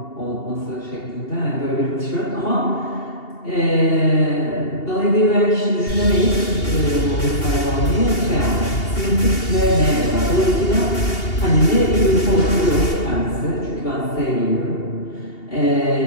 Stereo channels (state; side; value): late; right; 2.8 ms